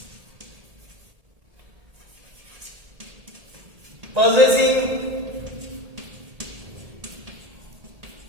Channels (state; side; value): late; left; 1.8 ms